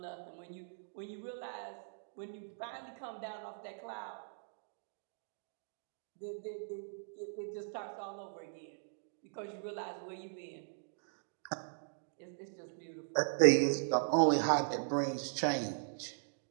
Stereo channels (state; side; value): silent; left; digital silence